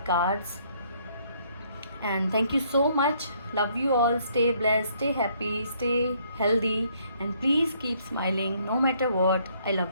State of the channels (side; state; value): both; inverted; correlation -0.67